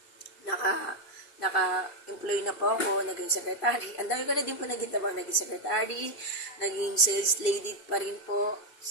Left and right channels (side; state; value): right; late; 2.6 ms